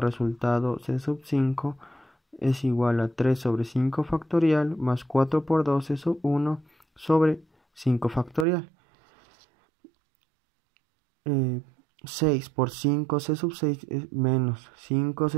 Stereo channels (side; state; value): left; drops out; at 8.5 s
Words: c sub 5 es igual a 3 sobre 5 factorial más 4 por 2 c sub 1 sobre 5 factorial. 6 por 5 c sub 6 es menos 5